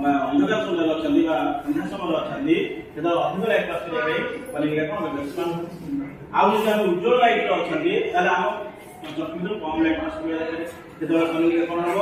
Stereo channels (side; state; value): both; identical; correlation 1.00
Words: ଅନ୍ଧକାର ସମୟରେ ଅଛନ୍ତି ବା ଅନ୍ଧାର ସମୟରେ ଅଛନ୍ତି ସେତେବେଳେ ଅଧିକ ଲାଇଟ୍ ପାସ୍ କରିବା ପାଇଁ କନିକା କ'ଣ ଏକ୍ସପାଣ୍ଡ ଆଉ ଯଦି ଆମେ ଉଜ୍ଜ୍ୱଳ ଲାଇଟ୍ ଅଛନ୍ତି ତାହେଲେ ଆମ ଚକ୍ଷୁରୁ କମ ଲାଇଟ୍ ପାସ୍ କରିବା ସେତେବେଳେ କନିକା କ'ଣ ହବ